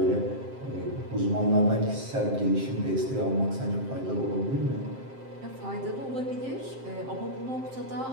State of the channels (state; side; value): late; left; 7.6 ms